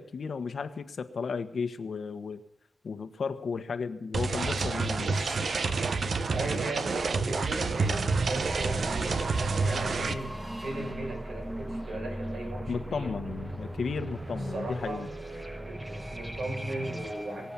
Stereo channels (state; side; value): normal; both; correlation 0.87